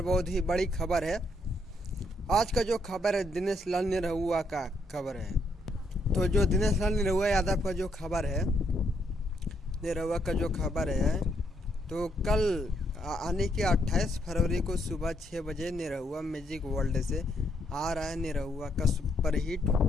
बहुत ही बड़ी खबर है। आज का जो खबर है दिनेश लाल निरहुआ का खबर है। तो जो दिनेश लाल निरहुआ यादव का जो खबर है, निरहुआ का जो खबर है, तो कल आने के 28 फरवरी को सुबह 6 बजे निरहुआ म्यूजिक वर्ल्ड से आ रहा है निरहुआ का सुपरहिट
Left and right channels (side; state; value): both; normal; correlation 0.74